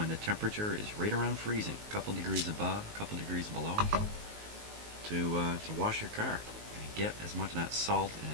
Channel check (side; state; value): left; late; 19 ms